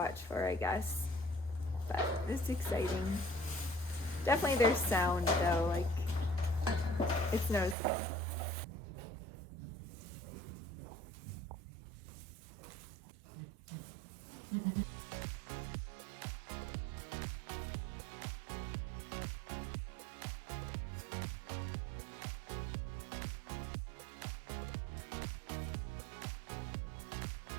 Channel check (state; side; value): drops out; left; at 7.8 s